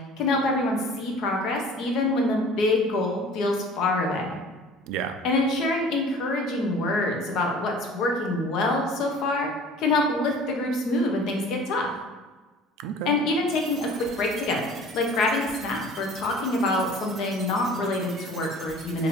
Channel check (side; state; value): both; normal; correlation 0.46